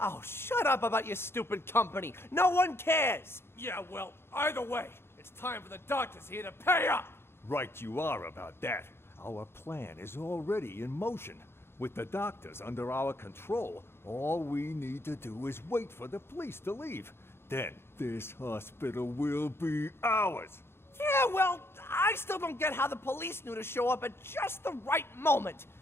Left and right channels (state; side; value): late; right; 0.12 ms